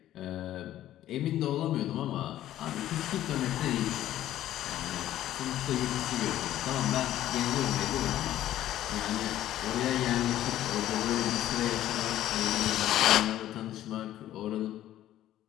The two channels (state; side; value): quieter; right; 13.0 dB